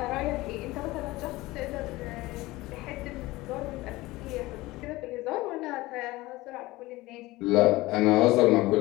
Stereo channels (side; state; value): right; quieter; 19.5 dB